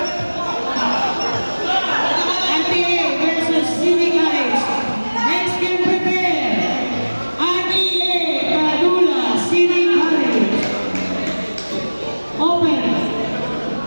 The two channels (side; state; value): both; inverted; correlation -1.00